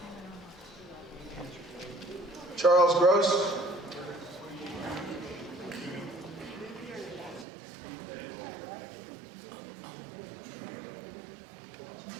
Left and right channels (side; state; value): left; drops out; at 7.5 s